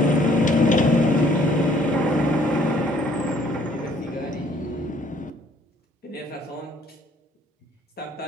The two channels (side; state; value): both; normal; correlation 0.61